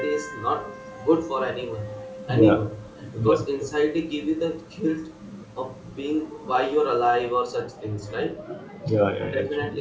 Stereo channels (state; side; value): identical; both; correlation 1.00